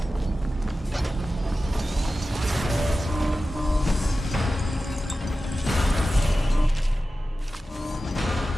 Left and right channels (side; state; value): both; normal; correlation 0.94